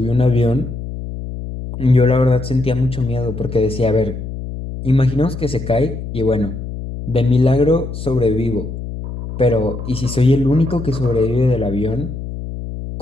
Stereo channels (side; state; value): left; noise; hum, 8 dB below the sound